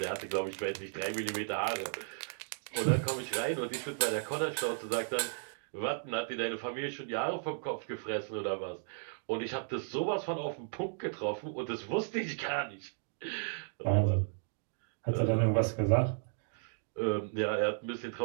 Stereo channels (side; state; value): left; silent; digital silence